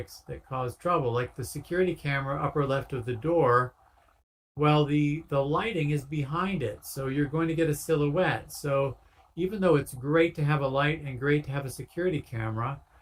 that cause trouble, like the security camera upper left of the door. Well, the lighting is behind it, so you're going to get a silhouette. So even though it's great to have a light and great to have a security camera,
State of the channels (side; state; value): both; identical; correlation 1.00